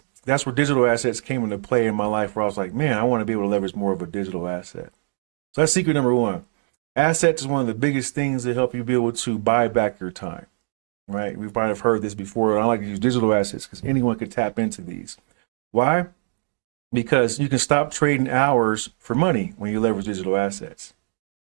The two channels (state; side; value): silent; left; digital silence